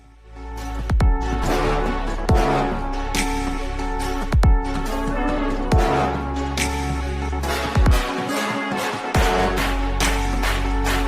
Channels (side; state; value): both; identical; correlation 1.00